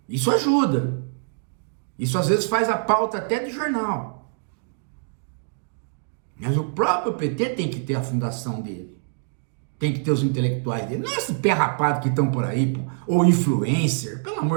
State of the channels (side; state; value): left; silent; digital silence